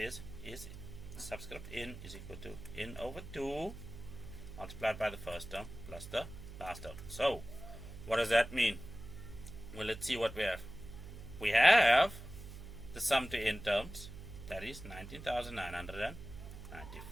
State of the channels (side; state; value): right; noise; hum, 12 dB below the sound